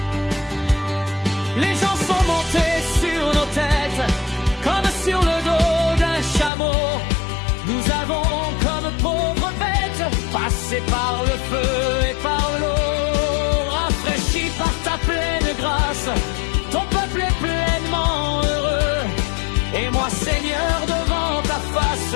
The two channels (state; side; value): drops out; right; at 6.5 s